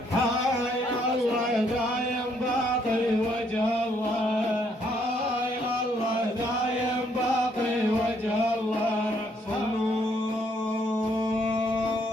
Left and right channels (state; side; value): normal; both; correlation 0.69